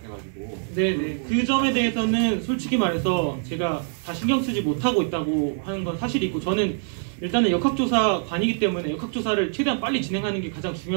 네네 그 점에 대해서는 솔직히 말해서 제가 다 신경 쓰지 못하고 있다고 하는 건 사실이고 저는 일단은 역학조사관이기 때문에 역학조사를 최대한 빨리 진행하는 게 가장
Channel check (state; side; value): silent; left; 62 dB below the other